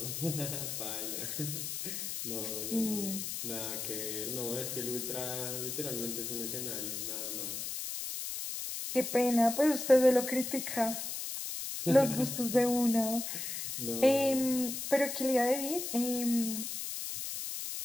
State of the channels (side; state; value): left; noise; hiss, 5 dB below the sound